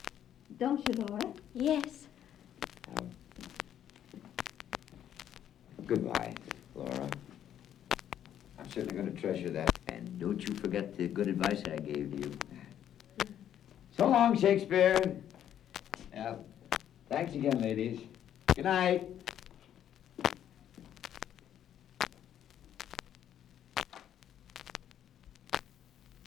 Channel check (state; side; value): quieter; right; 10.4 dB